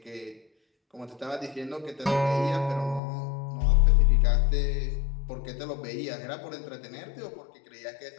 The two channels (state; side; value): drops out; right; at 3.0 s